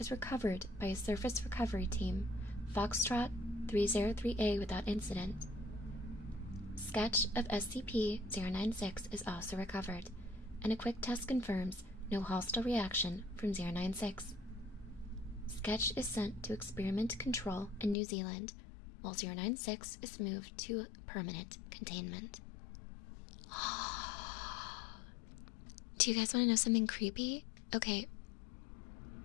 recovered by a surface recovery team, Foxtrot 303A, without incident. Sketch of SCP-096 is also recovered, and a quick test confirms no hostile reaction from 096. Sketch is sent to Experiment Control in New Zealand, while 096 is moved to permanent containment. Do you guys want to know something creepy? Okay,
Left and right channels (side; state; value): right; drops out; at 17.9 s